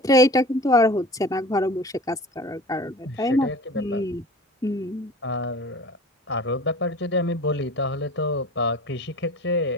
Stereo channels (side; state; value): both; normal; correlation 0.40